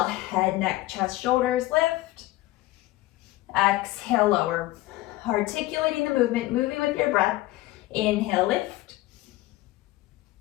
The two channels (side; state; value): right; quieter; 17.7 dB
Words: head, neck, chest, shoulders lift. Exhale, lower. Articulating the movement, moving with your breath. Inhale, lift.